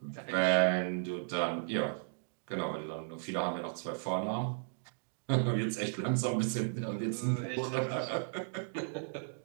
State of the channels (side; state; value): left; silent; digital silence